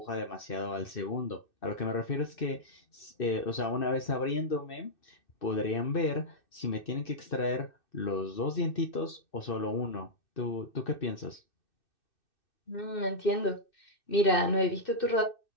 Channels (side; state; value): right; late; 2.6 ms